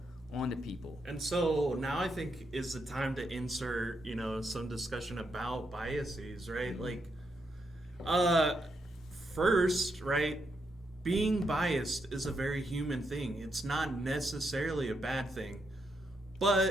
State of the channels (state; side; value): normal; both; correlation 0.80